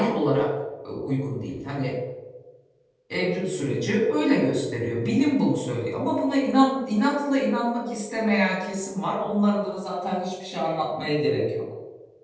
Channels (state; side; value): identical; both; correlation 1.00